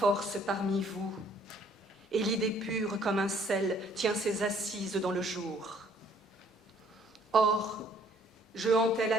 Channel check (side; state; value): both; normal; correlation 0.61